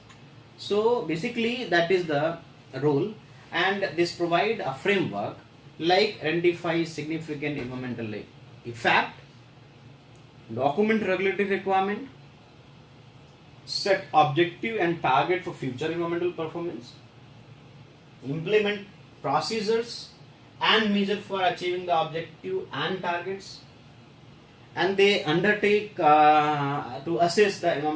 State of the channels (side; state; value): both; identical; correlation 1.00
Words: So basically that is the role, and this provide a framework like identify significant environmental effect, document regulatory requirement, set objective and target for future environmental performance, implement procedures and measure for achieving the objective and targets, and they undertake to assess the